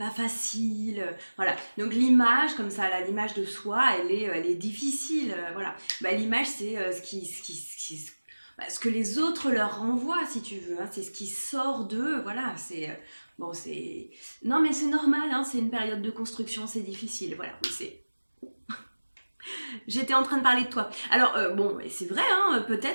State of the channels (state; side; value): inverted; both; correlation -1.00